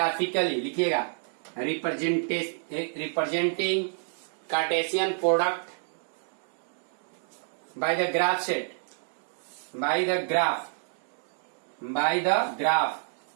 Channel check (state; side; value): silent; left; 59 dB below the other